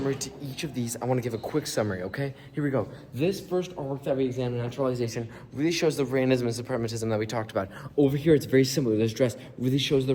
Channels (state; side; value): identical; both; correlation 1.00